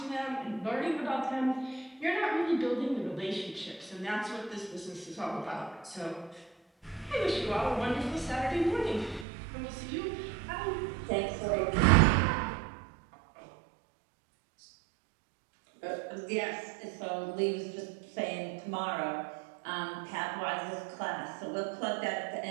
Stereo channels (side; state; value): left; drops out; at 9.2 s